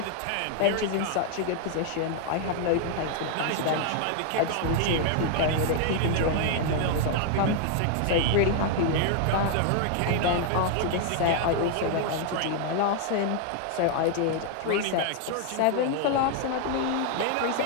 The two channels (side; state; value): both; different; correlation 0.00